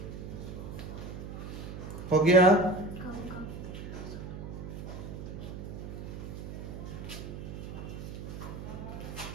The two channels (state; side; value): noise; right; hum, 8 dB below the sound